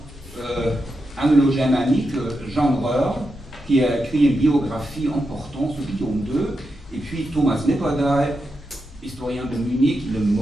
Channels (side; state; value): both; normal; correlation 0.87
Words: anglo-germanique, Jean Breur, qui a écrit une biographie importante sur Guillaume II, et puis Thomas Nipperdey, historien de Munich, il est